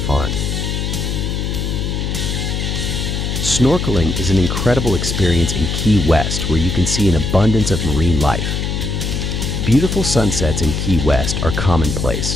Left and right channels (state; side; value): noise; left; hum, 2 dB below the sound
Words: Snorkeling is an incredible experience in Key West where you can see an abundance of marine life. Beautiful sunsets in Key West are